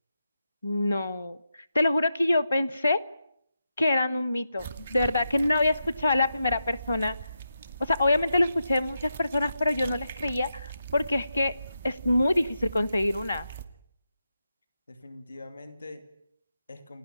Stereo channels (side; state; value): both; inverted; correlation -0.87